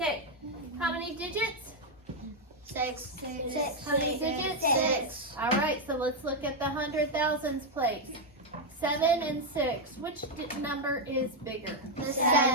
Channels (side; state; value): both; normal; correlation 0.02